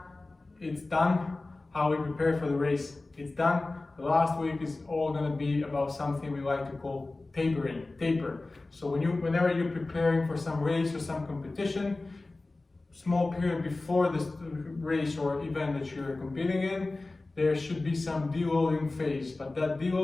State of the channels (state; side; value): quieter; right; 3.2 dB